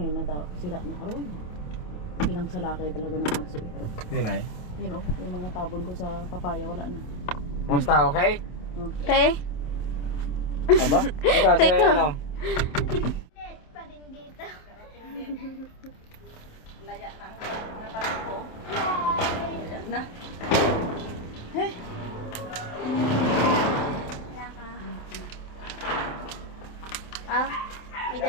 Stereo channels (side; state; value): right; late; 27 ms